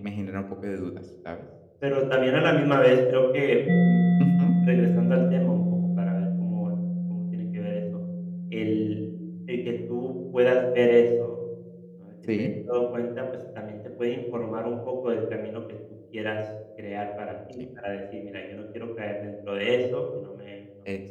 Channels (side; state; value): both; identical; correlation 1.00